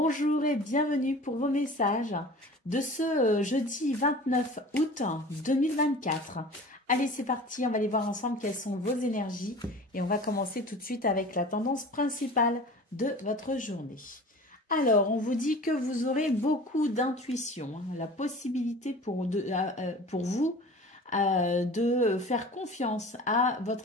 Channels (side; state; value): both; normal; correlation 0.40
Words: et bienvenue pour vos messages de ce jeudi 29 août 2024. Allez, c'est parti, on va aller voir ensemble quelles sont vos énergies et on va commencer tout de suite avec la tendance principale de votre journée. Alors, on vous dit que vous aurez beaucoup d'intuition, hein, la possibilité pour vous de faire confiance à